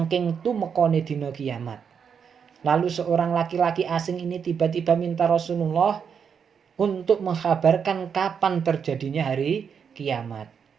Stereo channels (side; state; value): left; quieter; 6.9 dB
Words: tumekone dina kiamat. Lalu seorang laki-laki asing ini tiba-tiba minta Rasulullah untuk mengkabarkan kapan terjadinya hari kiamat.